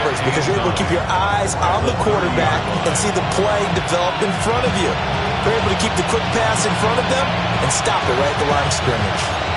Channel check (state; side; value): identical; both; correlation 1.00